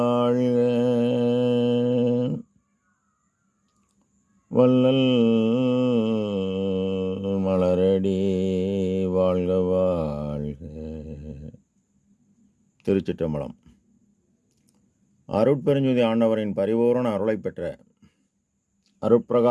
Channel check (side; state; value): both; identical; correlation 1.00